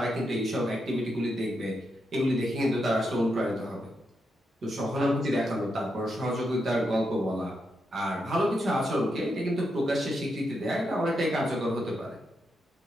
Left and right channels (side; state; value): both; normal; correlation 0.83